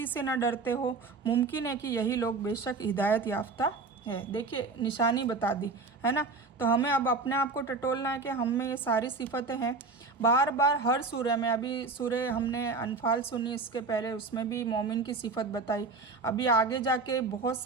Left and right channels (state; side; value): quieter; left; 4.0 dB